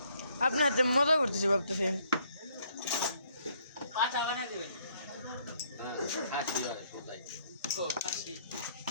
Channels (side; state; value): both; inverted; correlation -0.67